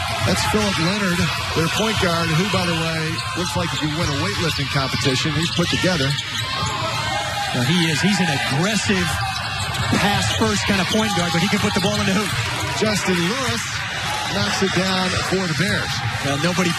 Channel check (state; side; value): identical; both; correlation 1.00